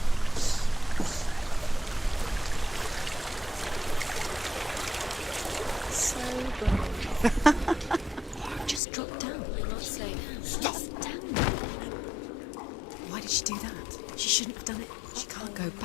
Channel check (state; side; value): drops out; right; at 8.8 s